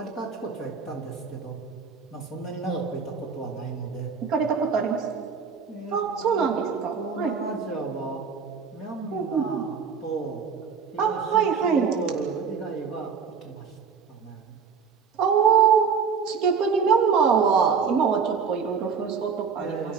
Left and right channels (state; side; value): quieter; left; 6.1 dB